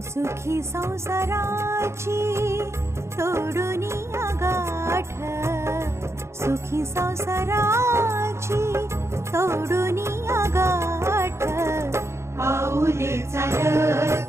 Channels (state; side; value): late; left; 0.13 ms